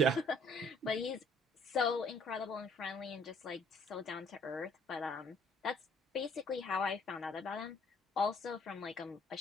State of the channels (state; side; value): normal; both; correlation 0.61